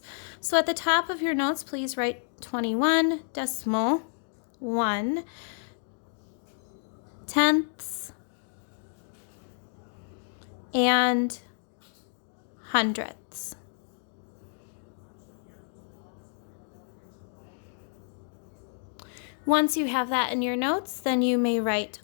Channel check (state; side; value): silent; right; 58 dB below the other